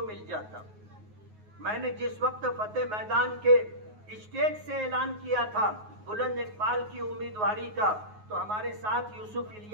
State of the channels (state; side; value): late; left; 9.5 ms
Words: मिल जाता। मैंने जिस वक्त फतेह मैदान के स्टेज से ऐलान किया था बुलंद इकबाल की उम्मीदवारी का, तो हमारे साथ यूसुफ